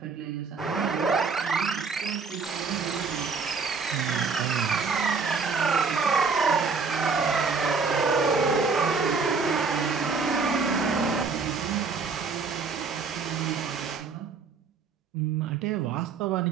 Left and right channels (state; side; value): quieter; left; 4.9 dB